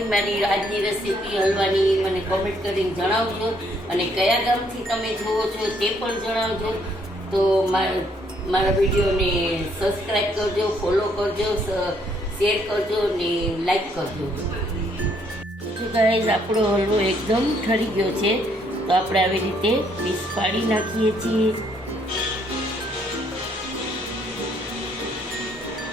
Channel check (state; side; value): normal; both; correlation 0.68